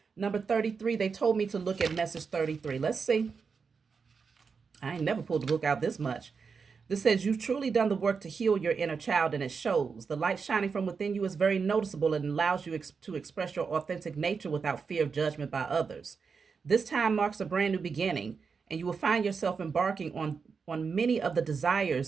number 33, they told me to look at message 33. Let's see. I ain't never pulled the book out this much. This says, you've truly done the work to heal your inner child, and it shows. The light shining from within you is very noticeable and allows you to express your authentic nature without fear of judgment by others. This time marks a brand new beginning, and you will find yourself embarking on many of the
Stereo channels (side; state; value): left; quieter; 5.4 dB